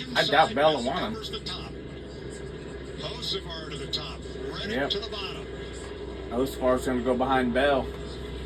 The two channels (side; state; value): both; identical; correlation 1.00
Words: I doubt inside, Bell will Bell want him. covers the top. Hocevar to the top, Reddick Yep. to the bottom. Hocevar's going to go behind Bell.